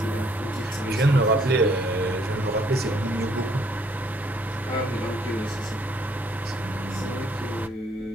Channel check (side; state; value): both; normal; correlation 0.65